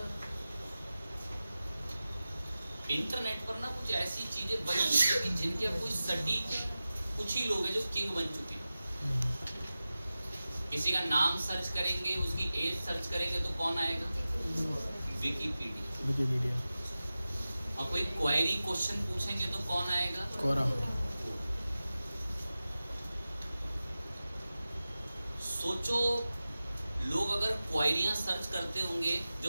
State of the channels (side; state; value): both; inverted; correlation -0.95